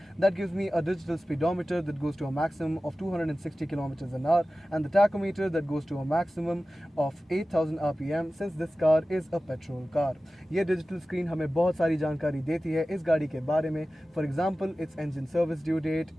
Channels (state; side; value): normal; both; correlation 0.95